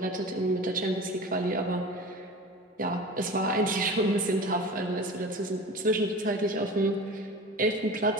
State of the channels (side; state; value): both; normal; correlation 0.35